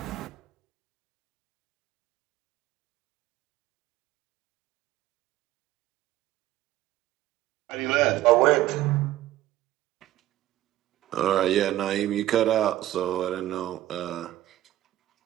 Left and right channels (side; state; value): left; quieter; 14.4 dB